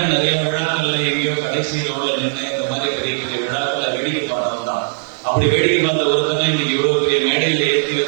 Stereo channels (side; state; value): left; silent; digital silence